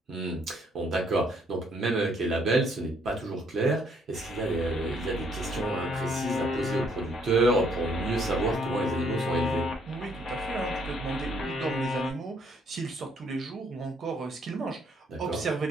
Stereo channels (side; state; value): both; normal; correlation 0.67